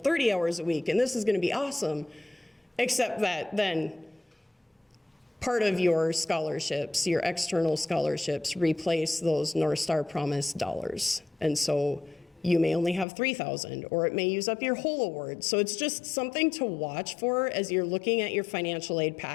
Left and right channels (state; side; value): drops out; right; at 13.1 s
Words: hours a week, and this is going to be awesome. Except that then part of your scholarships, your external scholarships, replace those North Star Promise dollars. And so you may only have $3,000, or it may use up your whole award. So it's just something to watch for as you're looking at your financial aid